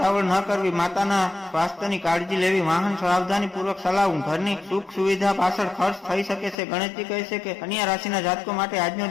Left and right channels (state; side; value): drops out; right; at 6.6 s